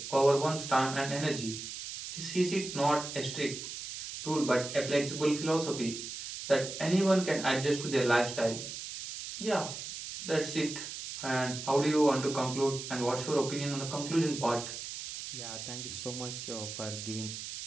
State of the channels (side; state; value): right; noise; hiss, 8 dB below the sound